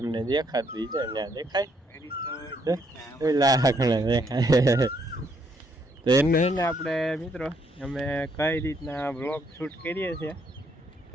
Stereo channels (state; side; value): normal; both; correlation 0.71